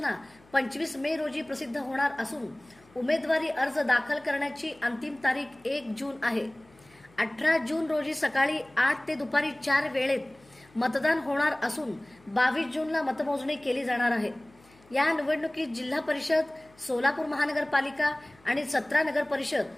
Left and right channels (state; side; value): noise; left; hum, 28 dB below the sound